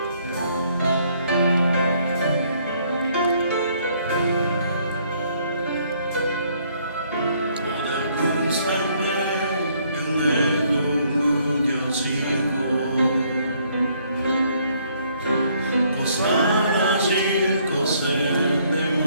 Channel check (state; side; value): inverted; both; correlation -0.66